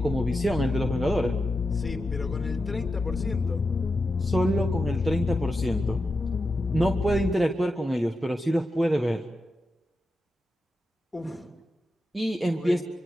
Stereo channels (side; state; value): both; normal; correlation 0.89